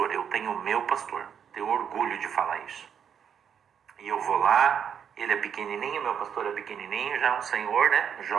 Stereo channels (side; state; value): left; quieter; 8.0 dB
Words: eu tenho meu pastor. Tenho orgulho de falar isso. E eu vou lá, ele é pequenininho, meu pastor é pequenininho, já é um senhor, né?